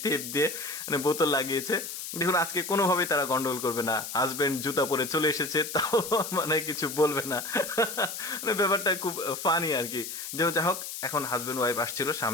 টেপ দিয়ে মানে বোতল লাগিয়েছে। দেখুন, আজকে কোনোভাবেই তারা গন্ডগোল করবে না। হাজবেন্ড জুতা পরে চলে এসেছে, তাও মানে কিছু বলবে না। মানে ব্যাপারটা খুব ফানি আর কি। যা হোক, এখন হাজবেন্ড ওয়াইফ আসছিল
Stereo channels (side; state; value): left; noise; hiss, 8 dB below the sound